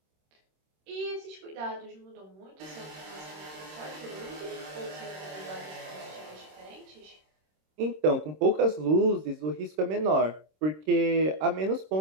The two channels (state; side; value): late; left; 26 ms